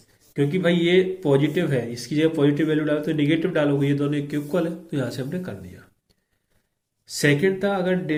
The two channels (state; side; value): identical; both; correlation 1.00